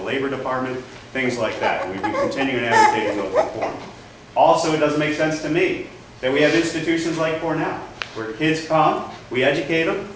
Labor Department, things like that. We've been continuing advocating those reforms. Also, it doesn't make sense to me that we have institutions like Cornell, where kids come, we educate them,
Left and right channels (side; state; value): both; identical; correlation 1.00